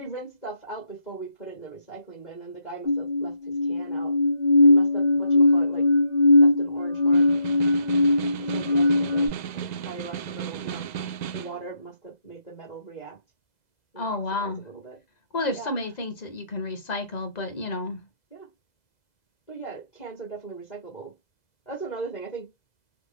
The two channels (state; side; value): late; right; 2.0 ms